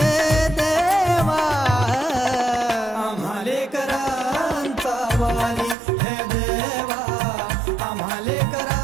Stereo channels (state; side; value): drops out; left; at 5.8 s